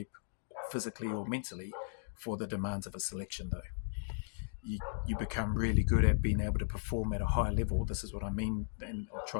physically or mentally for the demands of a selection, though. You become really good at being able to perform at a high level. This is what I mean, and I'll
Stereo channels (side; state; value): right; silent; digital silence